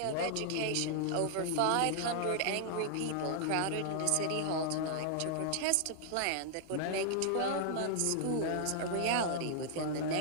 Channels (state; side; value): different; both; correlation 0.00